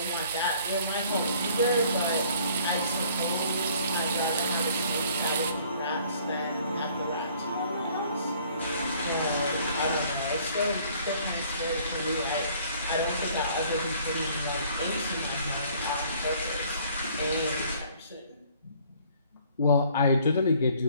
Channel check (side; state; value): both; inverted; correlation -0.58